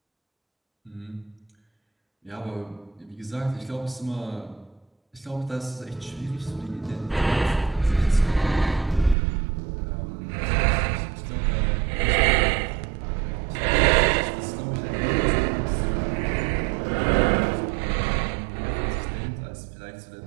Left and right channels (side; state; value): left; drops out; at 9.2 s